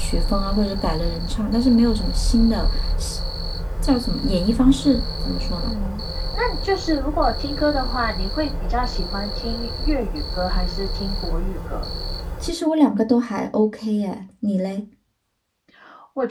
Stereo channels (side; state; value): both; identical; correlation 1.00